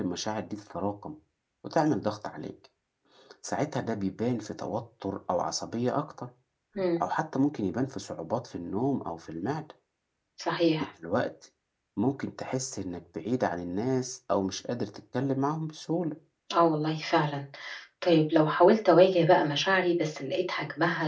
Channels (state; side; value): identical; both; correlation 1.00